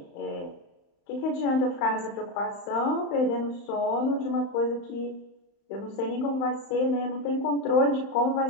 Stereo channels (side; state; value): right; late; 35 ms